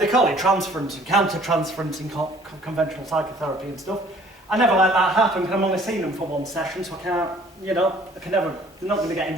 they call it transference and counter-transference in conventional psychotherapy and stuff. I never let that happen because I'm only seeing them for 1 session, so I can't, I can never, they're not going to get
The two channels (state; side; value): normal; both; correlation 0.55